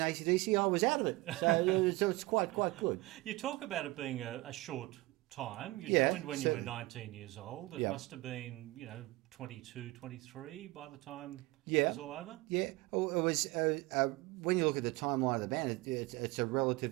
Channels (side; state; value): left; quieter; 21.1 dB